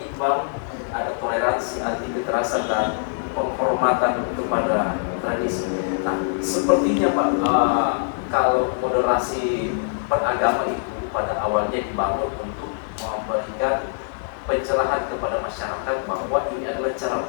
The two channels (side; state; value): right; silent; digital silence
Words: ada toleransi, anti kekerasan dan penghormatan kepada tradisi. Nah, sepertinya Pak, kalau moderasi beragama itu pada awalnya dibangun untuk memberikan pencerahan kepada masyarakat bahwa ini adalah cara